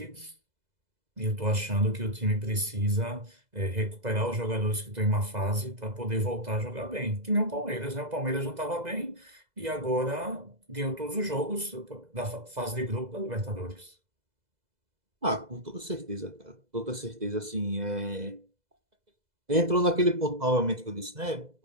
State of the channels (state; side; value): late; left; 2.0 ms